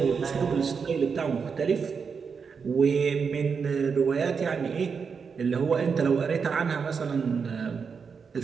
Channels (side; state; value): left; quieter; 5.8 dB